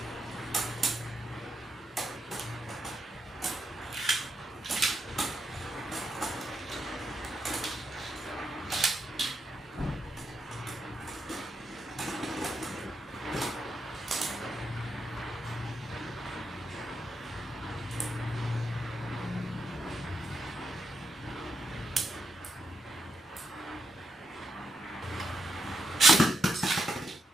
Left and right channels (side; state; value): both; normal; correlation 0.82